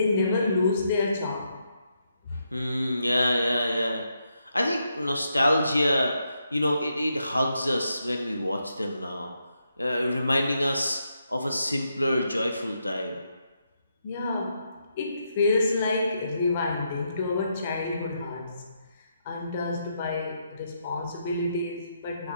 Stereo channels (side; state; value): both; inverted; correlation -0.81